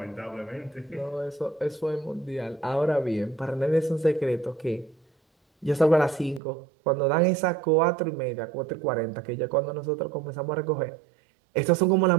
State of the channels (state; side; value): drops out; left; at 6.4 s